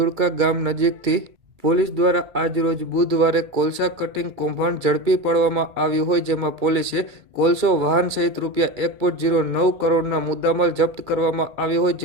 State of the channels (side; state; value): left; late; 2.2 ms